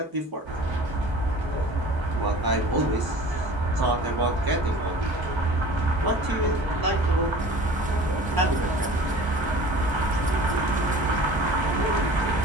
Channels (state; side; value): normal; both; correlation 0.42